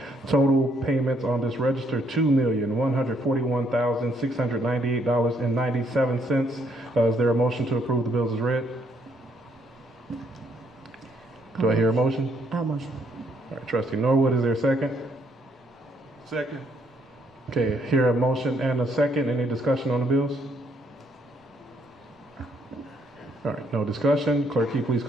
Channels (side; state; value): both; normal; correlation 0.70